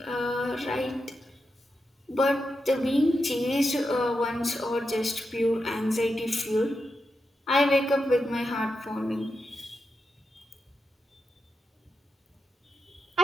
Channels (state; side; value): normal; both; correlation 0.87